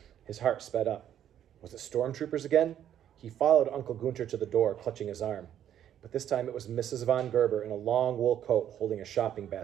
His heart sped up. Was it stormtroopers again? He followed Uncle Gunter to the door, clutching his arm. But this time it was Mrs. von Gerber in a long wool coat holding a shopping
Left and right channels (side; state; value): left; quieter; 10.4 dB